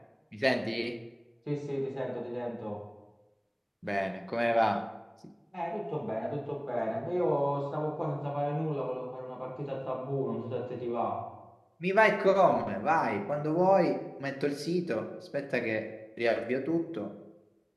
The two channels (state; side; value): identical; both; correlation 1.00